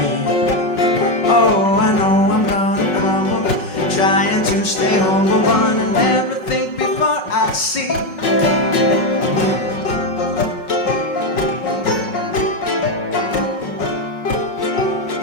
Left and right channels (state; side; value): late; right; 5.4 ms